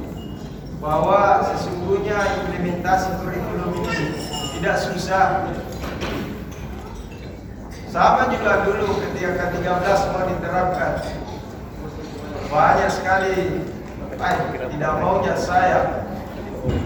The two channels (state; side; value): identical; both; correlation 1.00